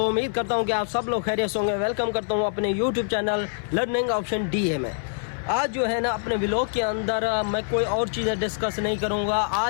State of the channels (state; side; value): silent; right; 62 dB below the other